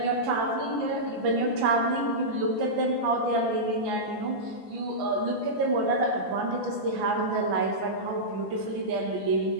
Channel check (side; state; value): left; late; 5.9 ms